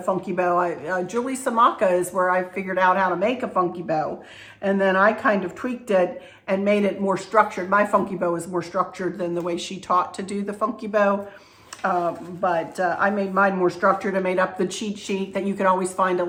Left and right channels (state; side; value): identical; both; correlation 1.00